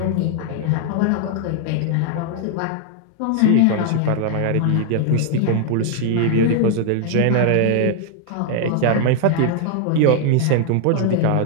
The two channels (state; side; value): different; both; correlation 0.00